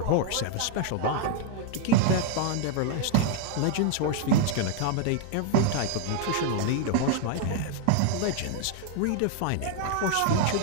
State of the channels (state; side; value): different; both; correlation 0.00